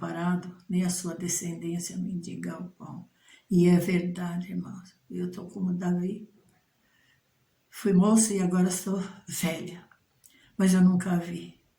nem a sua descendência mendigar o pão. E é verdade, irmãos, eu estou como Davi, fui moça e agora sou velha, mas eu nunca vi.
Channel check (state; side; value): identical; both; correlation 1.00